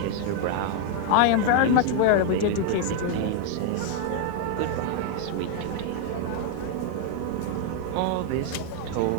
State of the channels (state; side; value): different; both; correlation 0.00